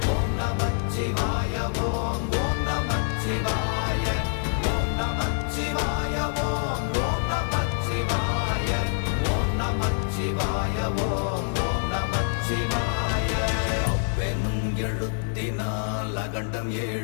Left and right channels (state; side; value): silent; right; digital silence